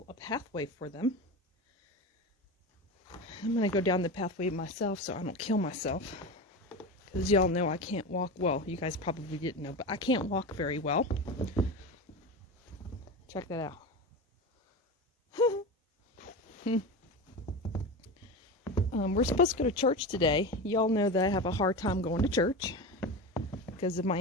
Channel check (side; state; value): both; normal; correlation 0.24